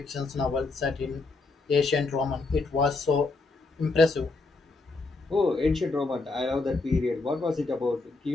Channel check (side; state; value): right; quieter; 3.6 dB